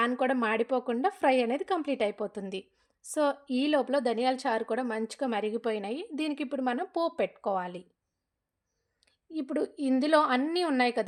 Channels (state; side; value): identical; both; correlation 1.00